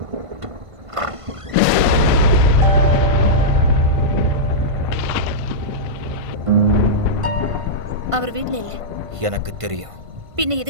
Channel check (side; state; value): left; late; 1.5 ms